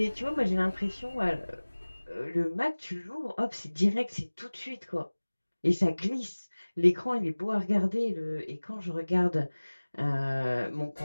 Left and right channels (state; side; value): inverted; both; correlation -1.00